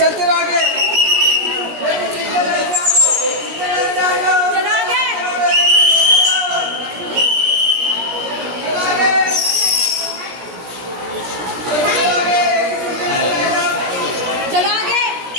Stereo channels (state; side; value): late; left; 17 ms